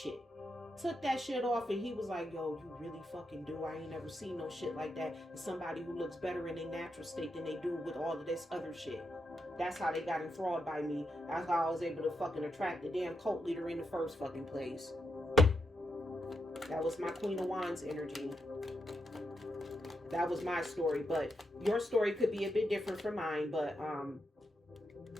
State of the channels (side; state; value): both; normal; correlation 0.84